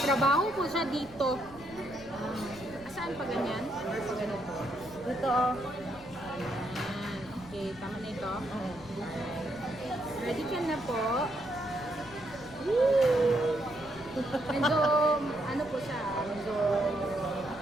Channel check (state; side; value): noise; left; rumble, 19 dB below the sound